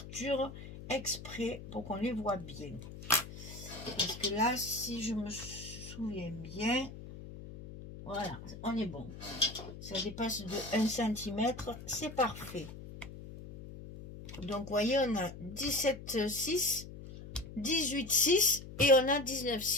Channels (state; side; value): noise; left; hum, 13 dB below the sound